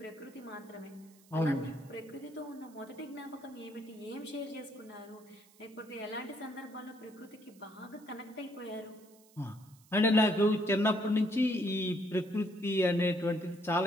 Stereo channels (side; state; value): right; noise; hiss, 27 dB below the sound